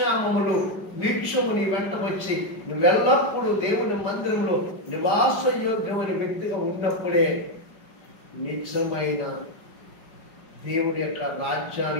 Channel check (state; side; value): late; right; 5.2 ms